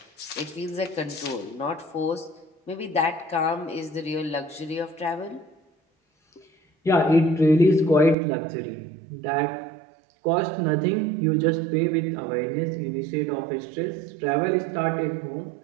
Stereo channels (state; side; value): drops out; left; at 8.2 s